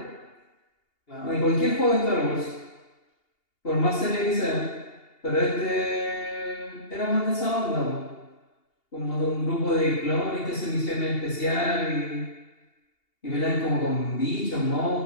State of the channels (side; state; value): right; late; 2.8 ms